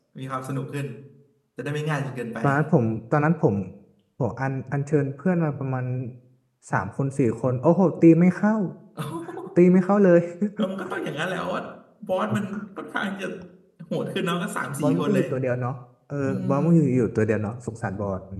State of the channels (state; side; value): identical; both; correlation 1.00